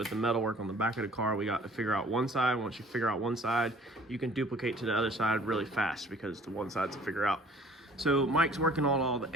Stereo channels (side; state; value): both; normal; correlation 0.53